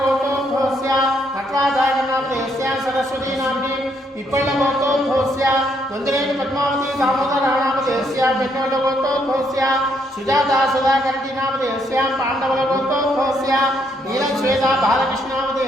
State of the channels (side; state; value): both; normal; correlation 0.72